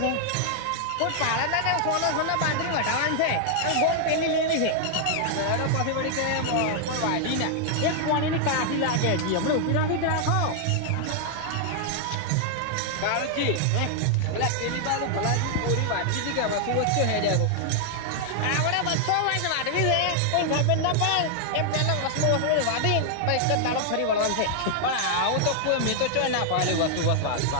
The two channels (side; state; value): both; different; correlation 0.00